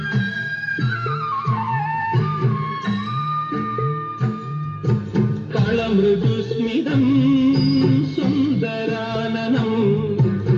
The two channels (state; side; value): identical; both; correlation 1.00